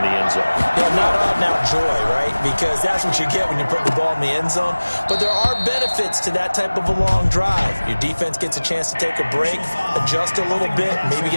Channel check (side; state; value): both; inverted; correlation -1.00